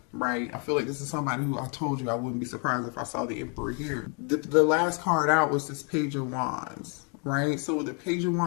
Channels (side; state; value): right; quieter; 37.1 dB